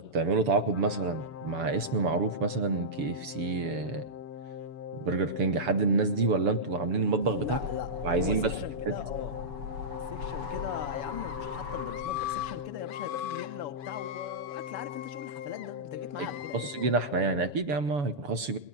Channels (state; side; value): late; left; 7.0 ms